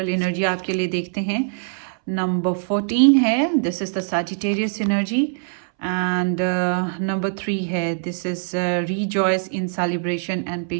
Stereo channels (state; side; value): silent; left; 64 dB below the other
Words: एनर्जी आपके लिए देखते हैं। नंबर 14 है, this is the Sagittarius energy. And number 3 है, this is rejoice in celebration and